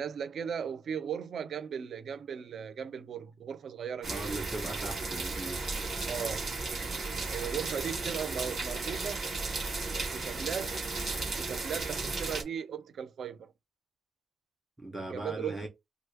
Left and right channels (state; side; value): quieter; left; 4.4 dB